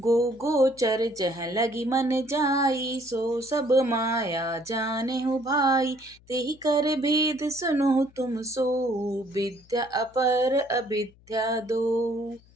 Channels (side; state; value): left; noise; hum, 28 dB below the sound